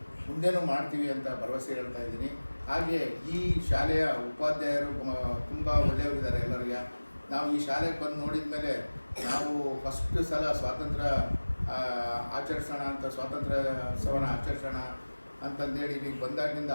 ಮುಂದೇನೂ ಮಾಡ್ತೀವಿ ಅಂತ ಭರವಸೆ ಹೇಳ್ತಾ ಇದ್ದೀನಿ. ಹಾಗೆ ಈ ಶಾಲೆಯ ಉಪಾಧ್ಯಾಯರು ತುಂಬ ಒಳ್ಳೆಯವರಿದ್ದಾರೆ ಎಲ್ಲರಿಗೆ. ನಾವು ಈ ಶಾಲೆಗೆ ಬಂದು ನೋಡಿದ ಮೇಲೆ ನಾವು ಫಸ್ಟ್ ಸಲ ಸ್ವಾತಂತ್ರ್ಯ ಆಚರಿಸೋಣ ಅಂತ, ಸ್ವಾತಂತ್ರ್ಯೋತ್ಸವನ ಆಚರಿಸೋಣ ಅಂತಂದೇಳಿ ಈಗ ಬಂದಾಗಿಂದ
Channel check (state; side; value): inverted; both; correlation -1.00